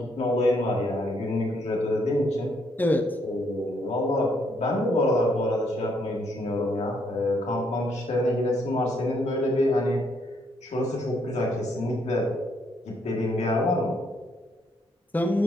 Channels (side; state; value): both; normal; correlation 0.72